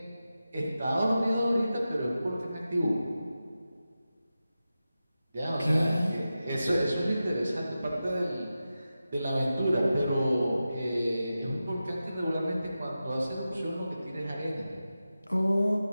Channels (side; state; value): both; inverted; correlation -0.93